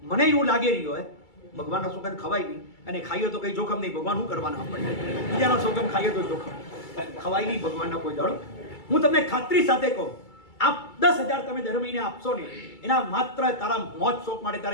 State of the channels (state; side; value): late; right; 2.3 ms